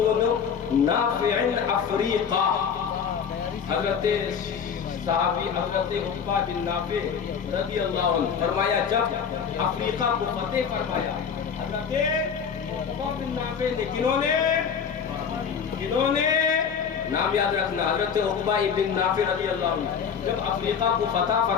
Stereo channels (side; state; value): right; quieter; 6.9 dB